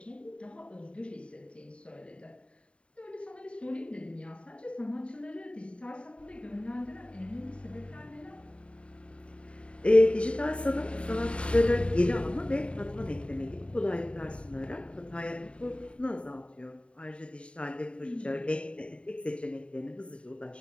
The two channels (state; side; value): late; right; 0.058 ms